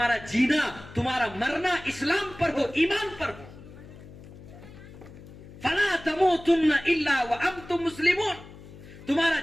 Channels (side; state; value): left; noise; hum, 18 dB below the sound